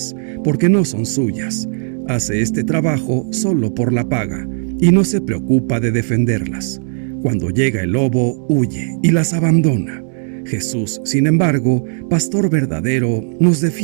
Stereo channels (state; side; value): silent; left; 57 dB below the other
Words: porque no son suyas. Hace este trabajo solo por la paga, y no se preocupa de defenderlas. Cuando llega el lobo, huye y las abandona. Jesús, sin embargo, pastor verdadero, nos